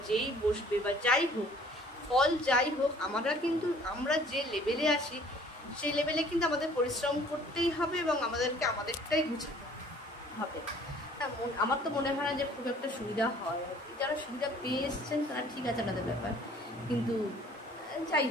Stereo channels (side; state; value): both; normal; correlation 0.54